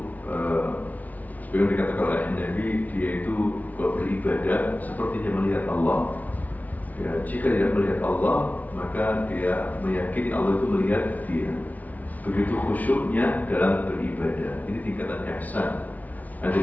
seperti dikatakan oleh Nabi, dia itu beribadah seperti dia melihat Allah. Ya, jika tidak melihat Allah, maka dia meyakini Allah itu melihat dia. Begitu khusyuknya dalam beribadah. Ini tingkatan ihsan.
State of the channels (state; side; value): late; right; 0.074 ms